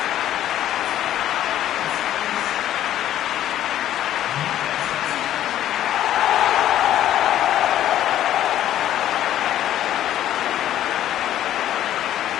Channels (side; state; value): right; quieter; 12.0 dB